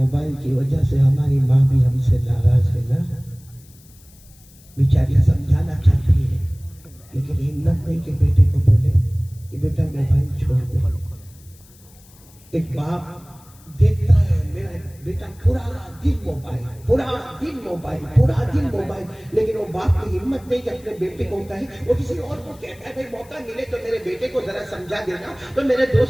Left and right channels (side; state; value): left; noise; hiss, 26 dB below the sound